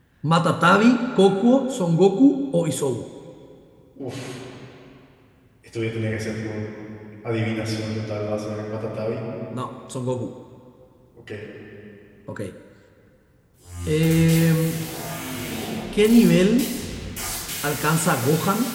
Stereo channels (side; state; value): both; identical; correlation 1.00